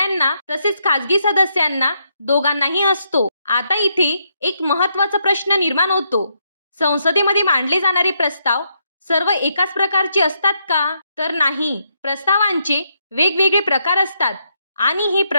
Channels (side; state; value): both; inverted; correlation -0.77